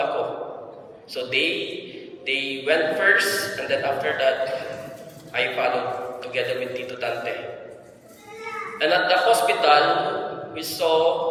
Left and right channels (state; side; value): identical; both; correlation 1.00